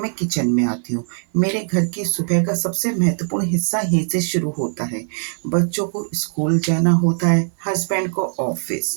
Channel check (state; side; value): silent; left; 56 dB below the other